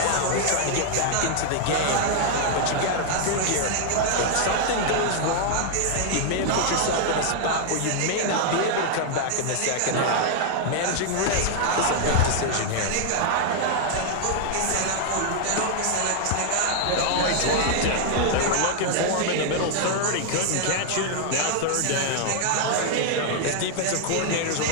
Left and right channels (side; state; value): both; different; correlation 0.00